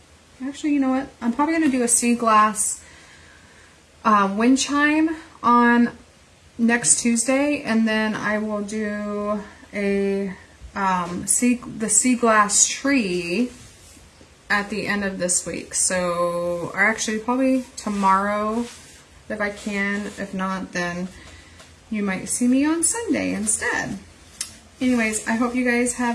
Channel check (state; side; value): identical; both; correlation 1.00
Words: actually, you know what? I'm probably going to do a sea glass wind chime on next Tuesday, and then I will do a the sea glass tree at the end of this week. So, or actually probably tomorrow if I can. If not, then you might see me on Sunday instead. Anyways, I hope you guys